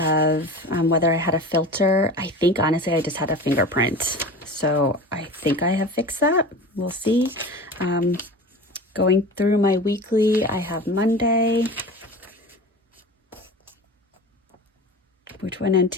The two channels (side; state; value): both; normal; correlation 0.34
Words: whether I had a filter. I think honestly I just had a fingerprint, so I think I have fixed that. We'll see. Going through my weekly, I have Monday, which went into